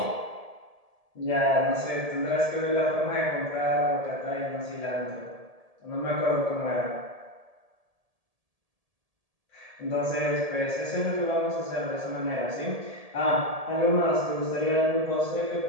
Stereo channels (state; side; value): late; left; 1.7 ms